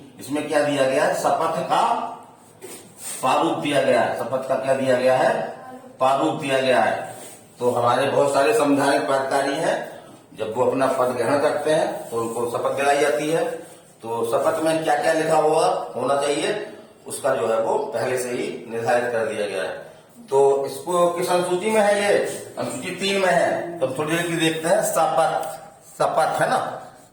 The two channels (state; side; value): identical; both; correlation 1.00